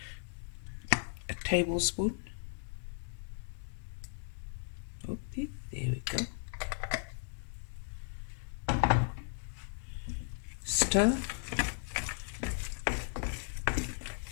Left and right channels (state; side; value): silent; right; digital silence